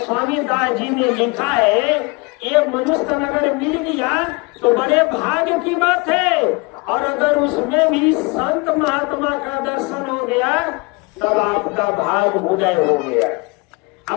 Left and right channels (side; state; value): right; quieter; 28.4 dB